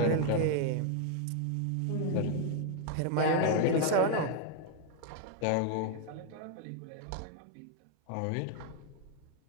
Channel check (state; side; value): different; both; correlation 0.00